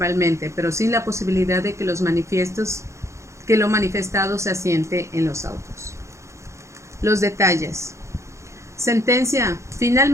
pero sin la posibilidad de que lo manifestado se asiente en los autos. Los detalles. Sentencia.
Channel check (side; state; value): left; late; 0.14 ms